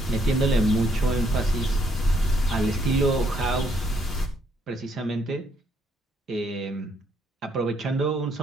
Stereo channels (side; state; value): both; normal; correlation 0.71